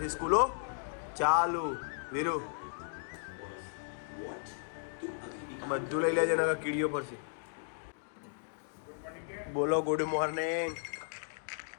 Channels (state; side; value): silent; right; digital silence